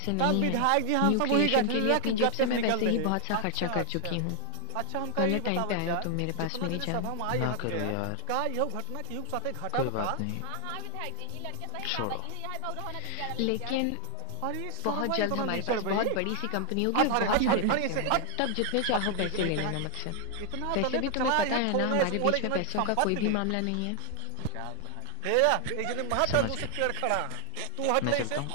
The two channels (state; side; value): different; both; correlation 0.00